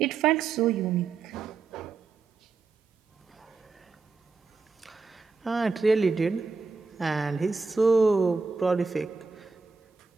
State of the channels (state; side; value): quieter; left; 4.5 dB